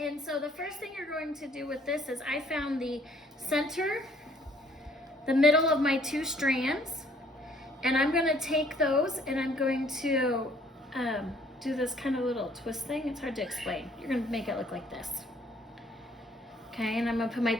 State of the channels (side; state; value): both; normal; correlation 0.61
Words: so the first thing you're going to do with this is I found the center, the middle of my two strands, and I'm going to take those and I'm going to do this kind of little twist thing. It's hard to explain. You're going to make it look like this. Okay, and I'm going to put my